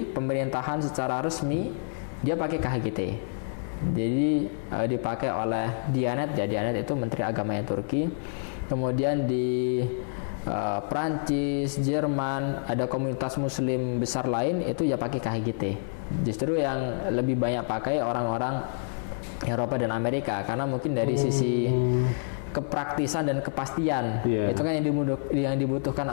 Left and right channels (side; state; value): right; silent; 56 dB below the other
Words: pemerintahan secara resmi dia pakai KHGT. Jadi dipakai oleh Diyanet ya, Diyanet itu Menteri Agamanya Turki. Kemudian di Prancis, Jerman, ada komunitas muslim besar lain itu ya pakai KHGT. Justru yang lebih banyak pakai orang-orang Eropa dan Amerika, karena mungkin dari sisi kepraktisan dan kepastian itu kan yang dibutuhkan